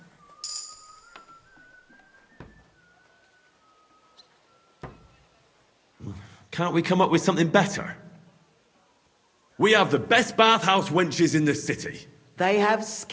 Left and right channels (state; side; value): identical; both; correlation 1.00